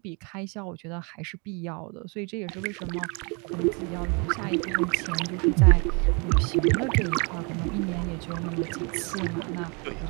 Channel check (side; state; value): left; quieter; 32.5 dB